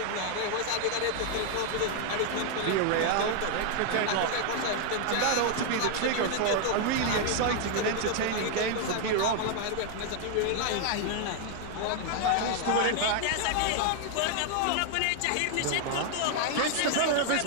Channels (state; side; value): different; both; correlation 0.00